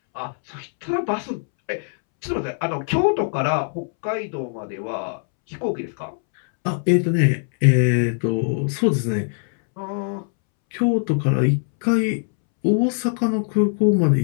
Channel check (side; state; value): right; silent; 64 dB below the other